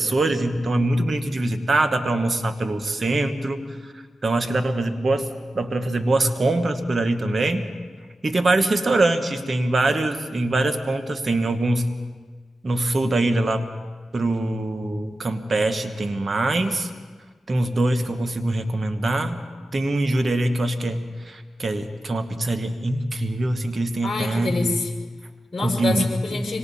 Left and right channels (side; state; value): both; normal; correlation 0.92